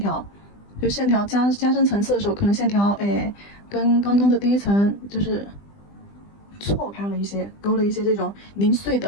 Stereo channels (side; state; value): right; late; 20 ms